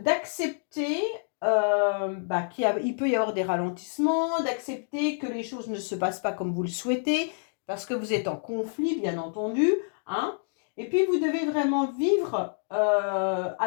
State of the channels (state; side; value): silent; right; digital silence